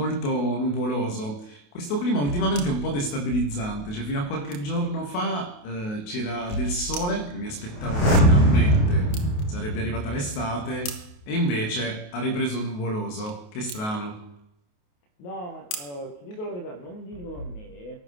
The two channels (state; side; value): late; right; 28 ms